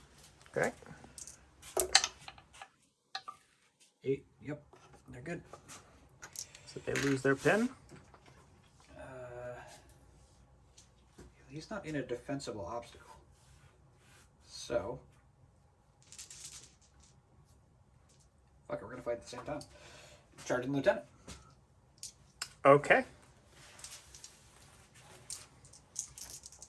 Okay. 8. Yep. They're good. So they lose their pin. He's not in a defensible obstacle. So. Fuck it, we're gonna fight at the same time. Charging lieutenant. Okay.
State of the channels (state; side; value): identical; both; correlation 1.00